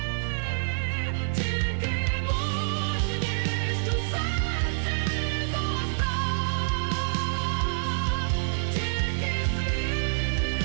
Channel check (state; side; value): silent; left; 60 dB below the other